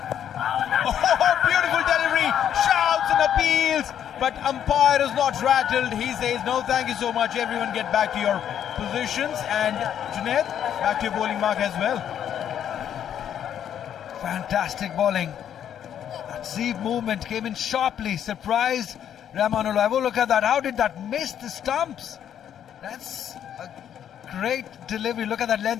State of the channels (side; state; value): right; quieter; 9.6 dB